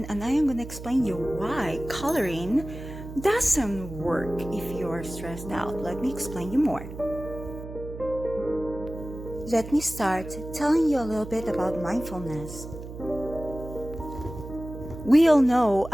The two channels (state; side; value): noise; right; hum, 11 dB below the sound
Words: and I am going to explain you why coloring doesn't work if you are stressed out. Let me explain you more. Let me start telling you a little bit about mindfulness. We all know